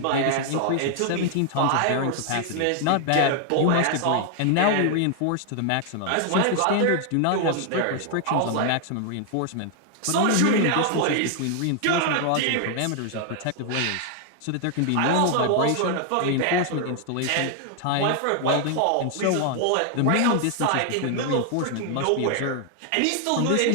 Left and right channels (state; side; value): different; both; correlation 0.00